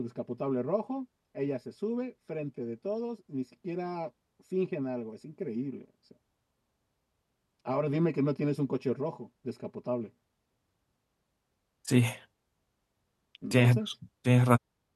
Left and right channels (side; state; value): both; identical; correlation 1.00